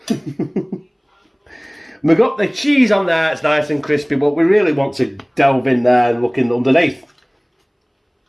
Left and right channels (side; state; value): both; identical; correlation 1.00